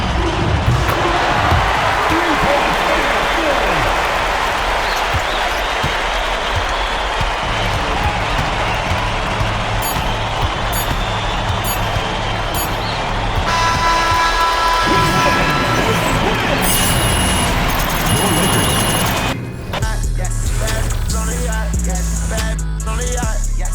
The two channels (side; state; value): both; identical; correlation 1.00